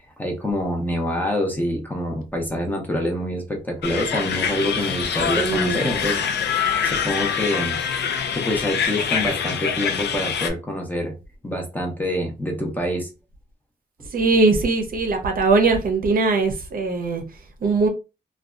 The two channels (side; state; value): both; normal; correlation 0.44